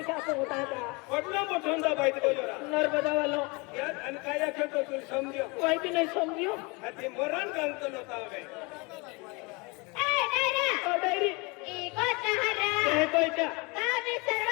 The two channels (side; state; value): right; quieter; 28.1 dB